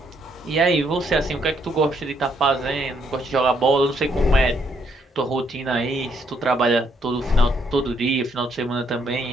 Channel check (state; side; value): normal; both; correlation 0.72